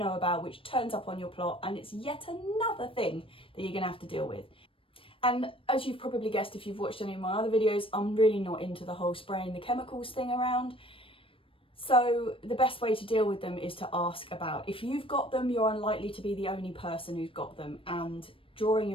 about which turns up on your plot, and it's yet another thing that you're going to have to deal with. And as you've probably guessed if you've watched any of my other videos, I'm really not into the whole spraying the chemicals thing around. So the best way to deal with them is to ask about. If you've got them, you're unlikely to be the only person who's got them, and drawing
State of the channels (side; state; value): right; late; 0.26 ms